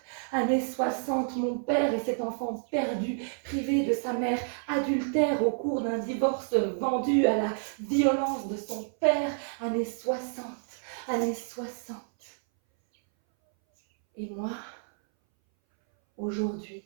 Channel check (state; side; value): silent; left; 58 dB below the other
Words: années 60, mon père et cet enfant perdu, privé de sa mère, adultère au cours d'un divorce, vendu à la violence de son père. Années 60, années 60. Et moi, aujourd'hui,